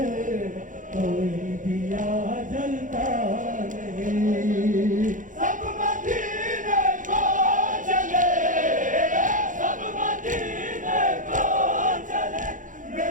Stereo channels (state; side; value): late; left; 0.38 ms